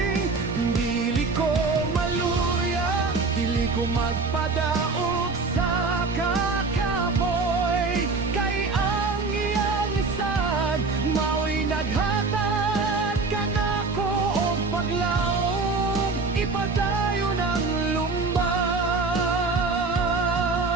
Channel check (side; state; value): left; quieter; 4.0 dB